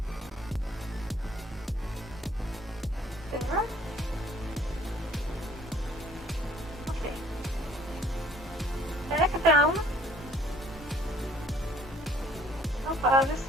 There. Okay. Back down. This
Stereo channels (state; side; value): normal; both; correlation 0.59